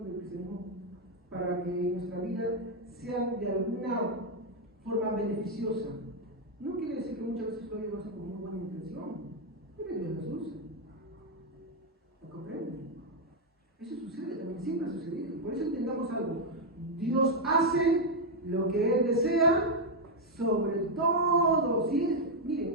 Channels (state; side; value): normal; both; correlation 0.01